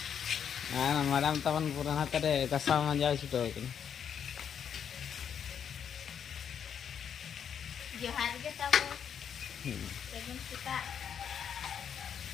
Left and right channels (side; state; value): right; quieter; 8.1 dB